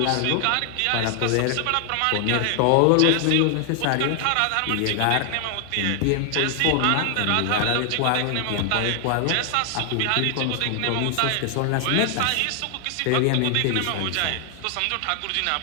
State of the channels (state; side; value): different; both; correlation 0.00